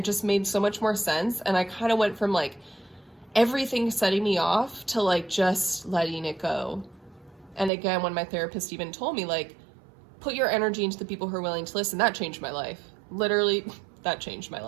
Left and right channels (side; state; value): left; drops out; at 7.7 s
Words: just made so much more sense. And I kind of went from like everything setting me off to like just letting it go. And again, when my therapist even told me like, put your energy into the people who are willing to listen, that changed my life. Literally, that changed my